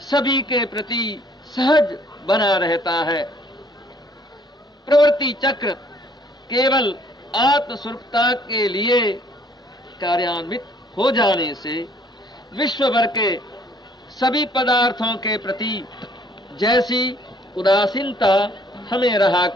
सभी के प्रति सहज बना रहता है। प्रवृत्ति चक्र केवल आत्मस्वरूपता के लिए कार्यान्वित हो जाने से विश्व भर के सभी पदार्थों के प्रति जैसी उदासीनता हमें रहा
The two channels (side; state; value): both; normal; correlation 0.61